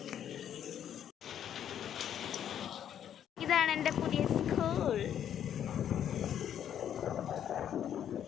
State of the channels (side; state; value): right; quieter; 9.7 dB